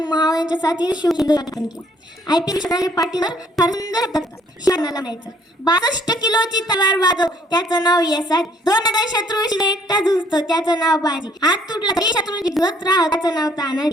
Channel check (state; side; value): normal; both; correlation 0.63